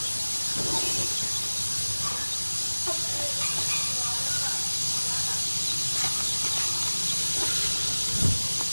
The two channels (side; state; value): both; inverted; correlation -1.00